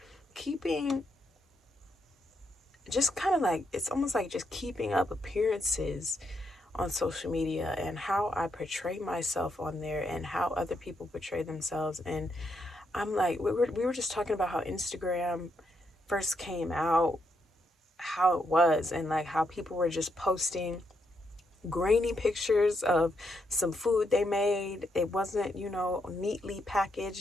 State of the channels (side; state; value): both; normal; correlation 0.79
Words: keeping, just kind of like, it's almost like just keeping up appearances on social media and how I portray myself on there and how other people portray themselves. And I'm like, we were just talking about how Instagram first came out, how it was, and like how people were just posting grainy pictures of some food they made. It wasn't, neatly